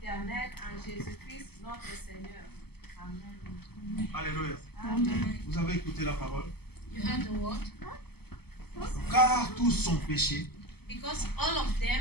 en Jésus-Christ, notre Seigneur. Amen. Alléluia. Amen. Vous avez écouté la parole. You heard the word? Car tous sont péchés. Because all of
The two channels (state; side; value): late; right; 0.96 ms